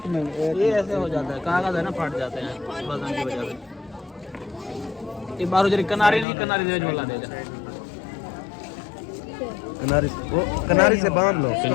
मिनट ये ऐसे हो जाता है, कागज है ना, फट जाते हैं वजन की वजह से। एक बार जरी कनारी नहीं, कनारी देज वाला देगा। कनारी, वो कनारी से बांध लो।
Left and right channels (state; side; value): drops out; right; at 6.2 s